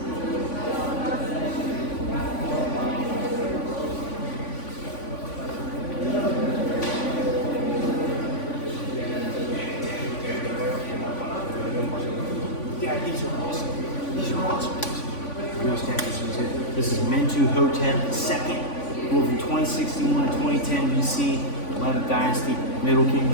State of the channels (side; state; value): right; late; 3.5 ms